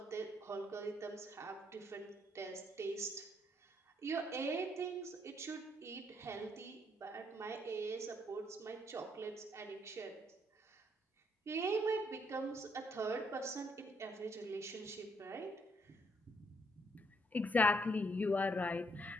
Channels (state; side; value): normal; both; correlation 0.71